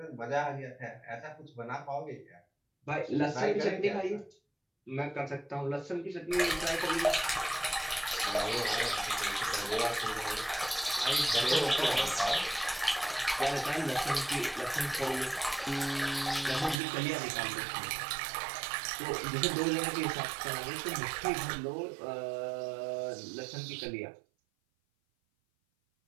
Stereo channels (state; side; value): drops out; left; at 16.8 s